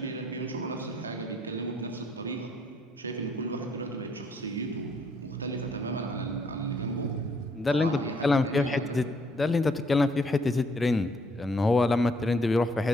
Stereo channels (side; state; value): both; normal; correlation 0.67